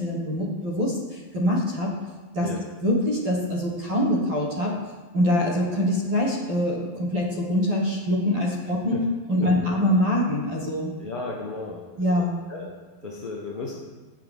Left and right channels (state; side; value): late; left; 12 ms